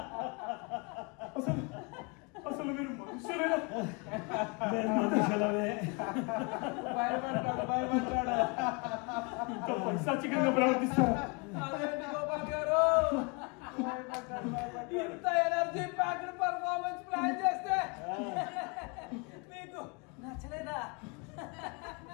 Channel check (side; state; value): right; quieter; 31.8 dB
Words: అసలు మీరు మనుషులేనా? మేము మనుషులమే. భయపడ్డాడు. ఇంత పైశాచికంగా ప్రవర్తిస్తారా? అదేంటి గోపాల్ గారు, ఇంత ఎనర్జీ ప్యాక్డ్ పర్ఫార్మెన్స్ ప్లాన్ చేస్తే మీకు నచ్చలేదా?